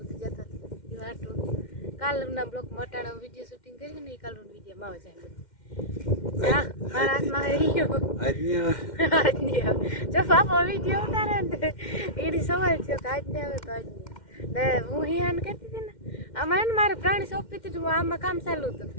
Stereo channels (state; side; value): late; right; 2.1 ms